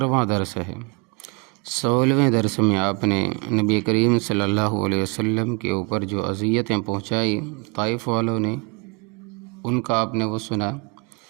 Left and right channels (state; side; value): quieter; left; 29.2 dB